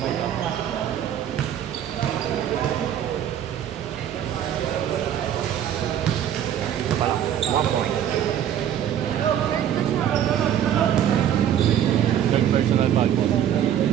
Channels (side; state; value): left; quieter; 10.1 dB